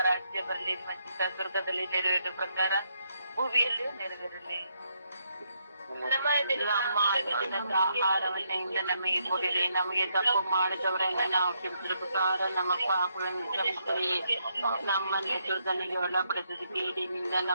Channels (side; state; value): both; inverted; correlation -0.77